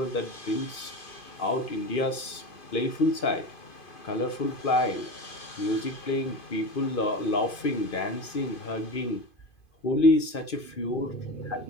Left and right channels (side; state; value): right; late; 2.5 ms